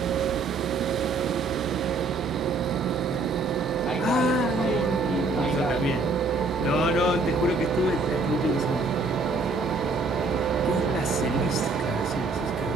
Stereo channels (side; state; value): left; quieter; 3.6 dB